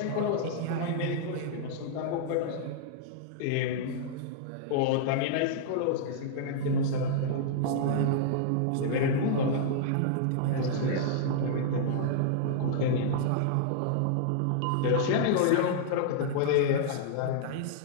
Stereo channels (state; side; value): different; both; correlation -0.01